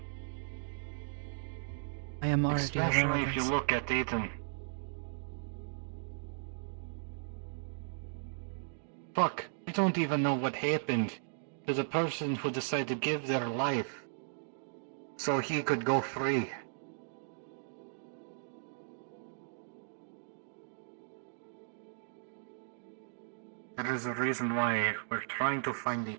I am already Especially aware of if you this. look at Ethan. Fuck, you don't even know what happened to the person who decided to give their life so he could go free. There is a reason why we're trying to find a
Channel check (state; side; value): silent; left; digital silence